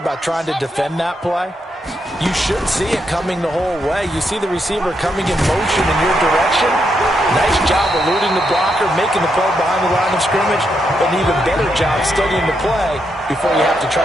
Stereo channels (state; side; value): normal; both; correlation 0.80